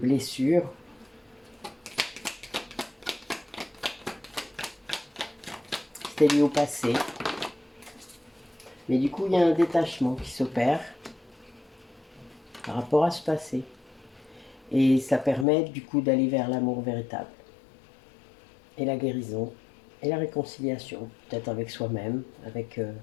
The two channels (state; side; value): drops out; right; at 15.5 s